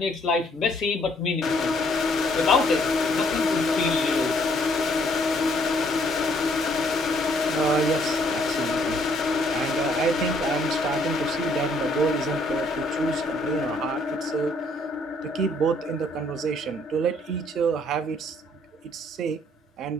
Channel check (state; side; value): normal; both; correlation 0.65